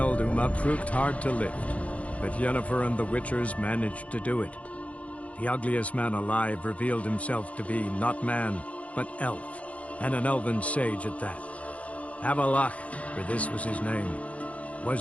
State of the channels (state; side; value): late; right; 0.065 ms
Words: Uma proved hard to lift, but Yennefer and the Witchers managed to do it. The ugliest man alive revealed himself to be not man, but elf, and an elven sage at that. Avalach, for this was his name,